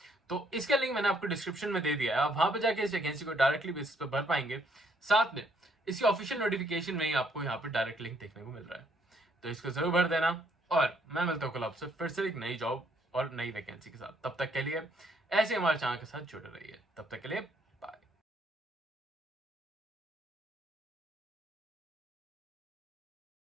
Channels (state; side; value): normal; both; correlation 0.69